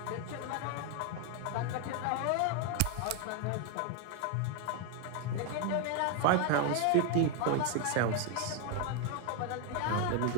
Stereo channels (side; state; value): both; different; correlation 0.01